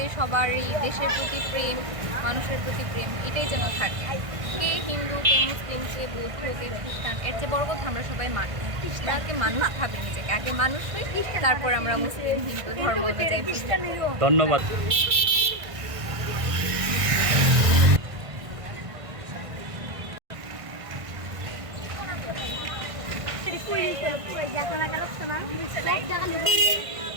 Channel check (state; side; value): late; left; 1.6 ms